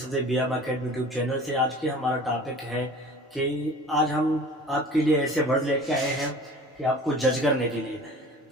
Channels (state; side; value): normal; both; correlation 0.43